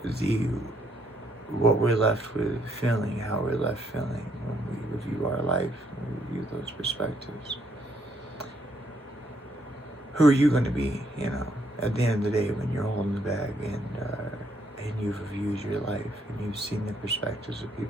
What we're left with feeling, how we're left feeling when we review our life, when we review those perspectives. Who are you going to be, at the end of the day, when you're holding the bag and you've reviewed your life and you've seen the perspectives of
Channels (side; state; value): both; normal; correlation 0.72